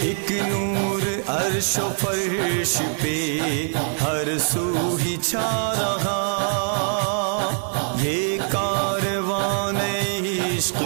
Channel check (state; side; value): silent; left; digital silence